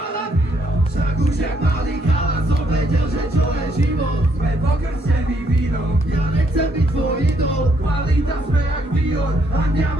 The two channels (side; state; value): both; normal; correlation 0.72